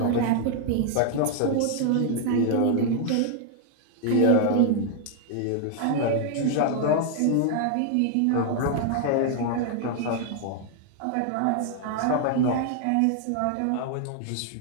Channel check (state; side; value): different; both; correlation 0.00